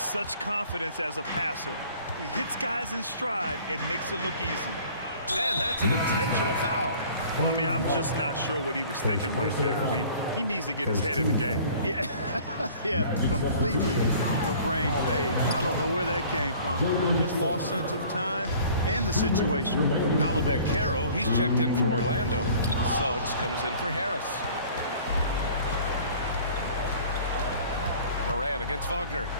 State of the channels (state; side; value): inverted; both; correlation -0.49